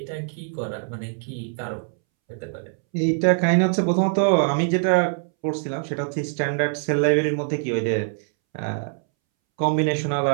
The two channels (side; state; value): left; silent; 63 dB below the other